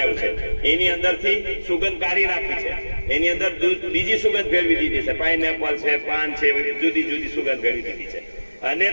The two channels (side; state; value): both; inverted; correlation -1.00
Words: છે. એની અંદરથી સુગંધ કાઢી નાખી છે. એની અંદર બીજી સુગંધ ભેળવી દીધી છે. પાઇનેપલ છે, પાન છે, જુદી જુદી સુગંધ ભેળવી દીધી છે. અને